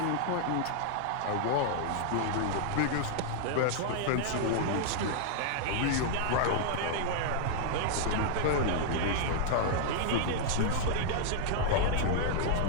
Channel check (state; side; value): different; both; correlation -0.01